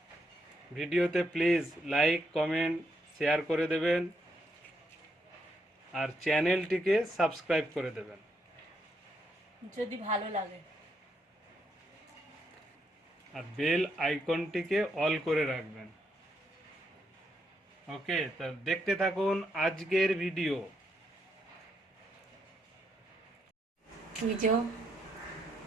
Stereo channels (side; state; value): both; normal; correlation 0.78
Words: ভিডিওতে প্লিজ লাইক, কমেন্ট, শেয়ার করে দেবেন আর চ্যানেলটিকে সাবস্ক্রাইব করে দেবেন যদি ভালো লাগে। আর বেল আইকনটিকে অল করে রাখবেন। ওকে, তা দেখতে থাকুন আজকের ভিডিও। বুঝো,